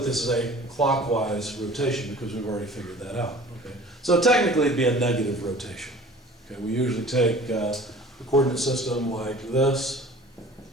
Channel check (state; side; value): normal; both; correlation 0.46